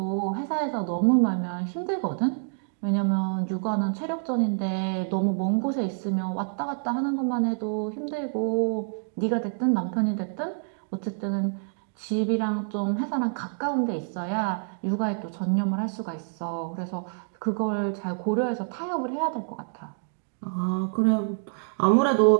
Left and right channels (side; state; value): left; silent; digital silence